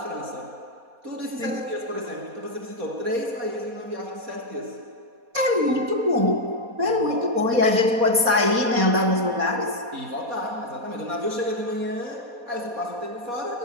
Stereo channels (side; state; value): left; late; 4.2 ms